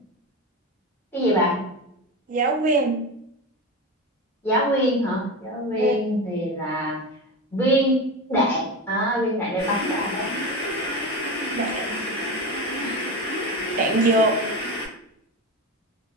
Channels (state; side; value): normal; both; correlation 0.22